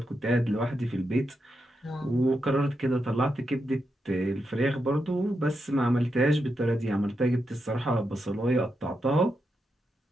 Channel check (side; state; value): both; normal; correlation 0.85